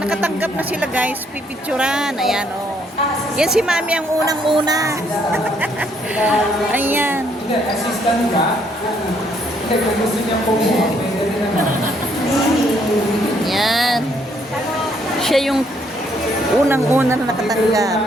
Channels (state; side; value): normal; both; correlation 0.69